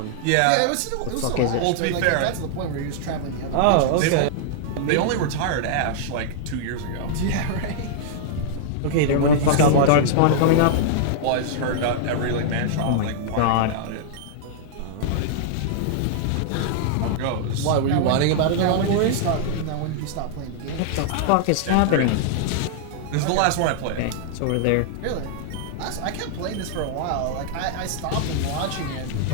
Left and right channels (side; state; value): both; different; correlation -0.01